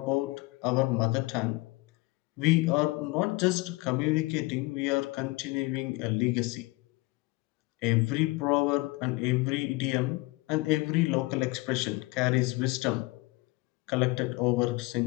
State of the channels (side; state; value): right; quieter; 23.4 dB